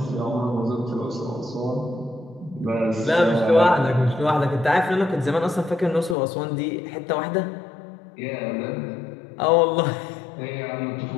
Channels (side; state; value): right; drops out; at 6.2 s